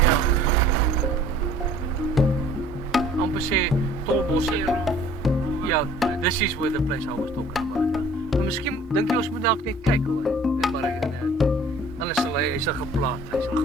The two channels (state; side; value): normal; both; correlation 0.51